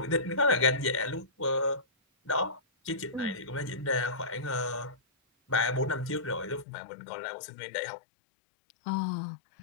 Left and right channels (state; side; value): drops out; right; at 6.7 s